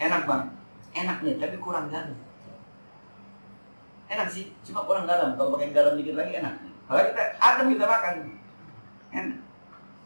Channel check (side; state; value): both; inverted; correlation -1.00